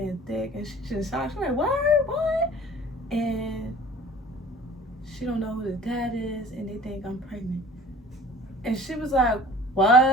thick. And she just shocked. She's like, what? And she don't know who the dad is and they think I'm pregnant. And she was like,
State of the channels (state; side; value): normal; both; correlation 0.46